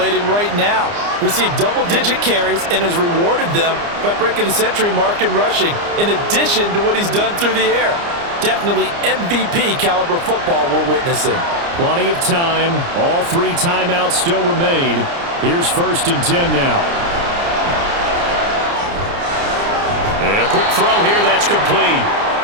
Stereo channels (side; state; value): left; late; 29 ms